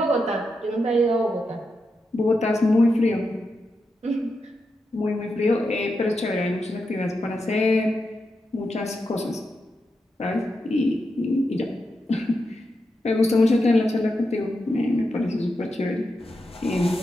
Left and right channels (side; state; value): both; normal; correlation 0.87